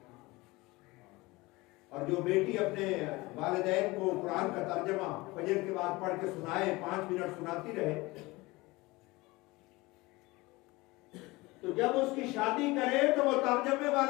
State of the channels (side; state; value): right; quieter; 22.0 dB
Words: اور جو بیٹی اپنے والدین کو قرآن کا ترجمہ فجر کے بعد پڑھ کے سنائے، 5 منٹ سناتی رہے، تو جب اس کی شادی کرے تو وہ ترجمے